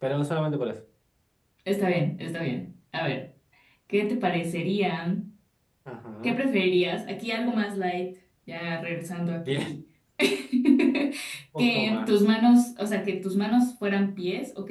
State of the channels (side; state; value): both; identical; correlation 1.00